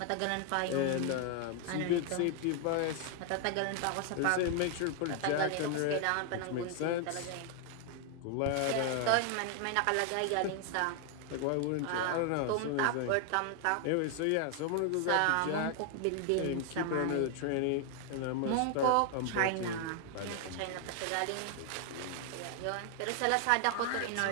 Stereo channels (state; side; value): different; both; correlation 0.00